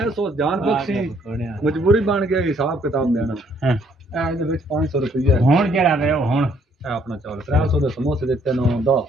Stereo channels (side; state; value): both; normal; correlation 0.66